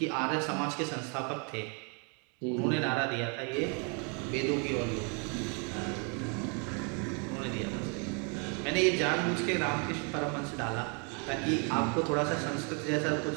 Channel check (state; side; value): quieter; left; 36.2 dB